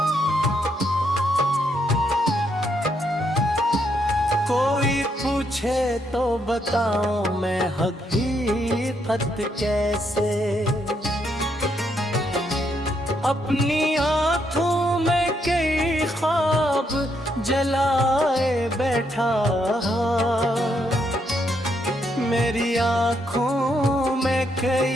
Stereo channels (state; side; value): normal; both; correlation 0.76